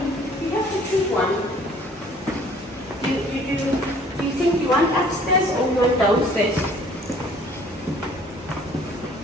You have to choose one. Do you think you want upstairs or you want downstairs?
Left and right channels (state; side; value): normal; both; correlation 0.55